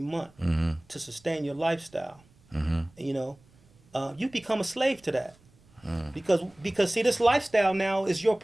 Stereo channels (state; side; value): noise; right; rumble, 30 dB below the sound